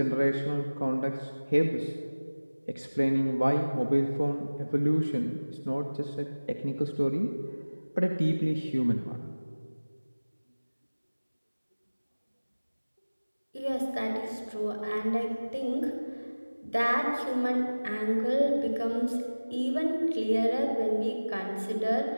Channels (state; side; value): inverted; both; correlation -1.00